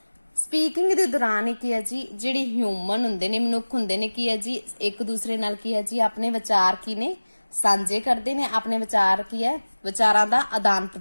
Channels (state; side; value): inverted; both; correlation -1.00